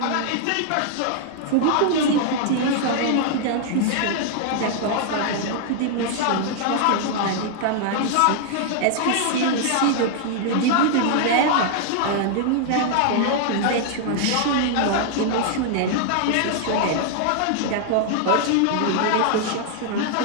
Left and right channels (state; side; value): different; both; correlation 0.00